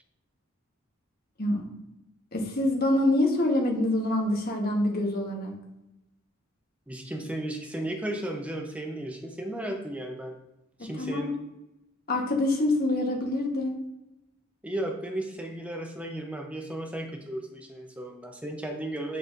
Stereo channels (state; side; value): normal; both; correlation 0.66